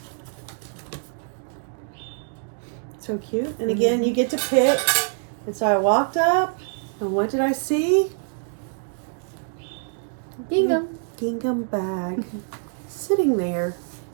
So cute. And again, you get to pick. And so I walked up, and what did I see? Gingham. Gingham bag sitting there.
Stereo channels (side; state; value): left; silent; digital silence